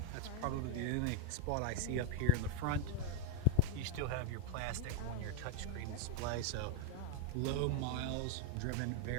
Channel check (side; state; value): both; different; correlation 0.01